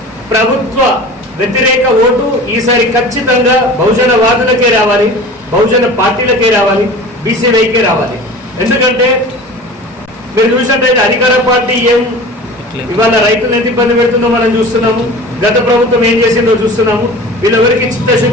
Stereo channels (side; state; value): both; normal; correlation 0.38